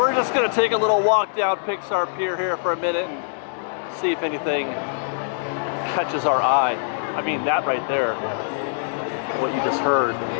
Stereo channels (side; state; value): right; silent; digital silence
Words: just going to take a little walk down Pixar Pier here for a minute and see if anything catches our eye. I mean, that right there, what you just heard.